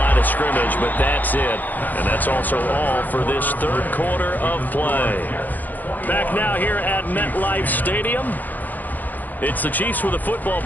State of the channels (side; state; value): right; late; 0.084 ms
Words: of scrimmage, but that's it. And that's also all for this third quarter of play. Back now here at MetLife Stadium. It's the Chiefs with a football,